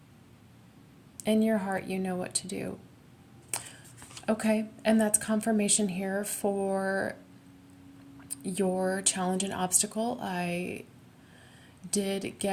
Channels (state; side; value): identical; both; correlation 1.00